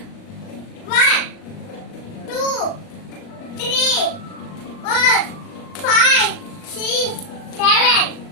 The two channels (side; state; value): right; late; 38 ms